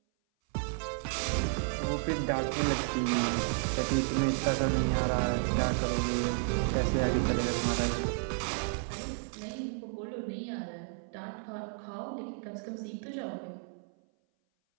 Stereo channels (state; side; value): silent; left; 56 dB below the other